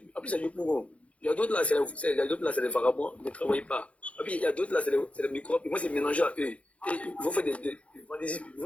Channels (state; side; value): late; right; 0.063 ms